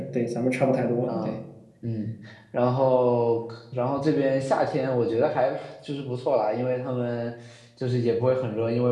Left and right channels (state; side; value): identical; both; correlation 1.00